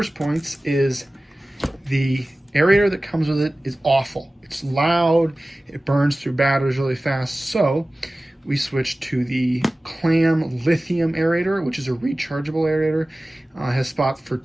points. Is the aerator that comes with it is awful. It's loud, it burns through batteries really fast, so we switched to the Clam lithium aerator, which is a rechargeable aerator. It has spots for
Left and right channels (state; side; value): normal; both; correlation 0.97